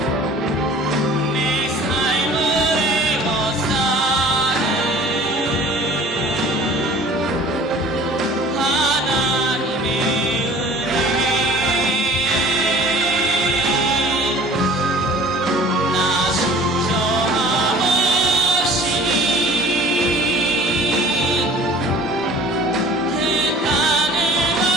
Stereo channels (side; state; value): both; normal; correlation 0.47